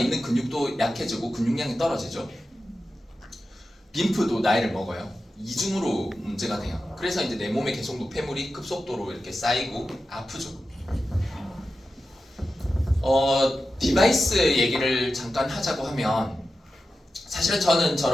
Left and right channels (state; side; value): normal; both; correlation 0.92